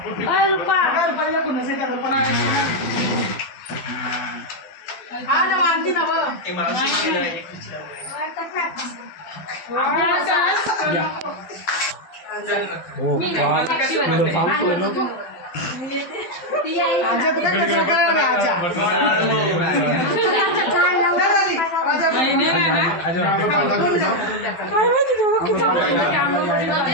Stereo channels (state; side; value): late; right; 12 ms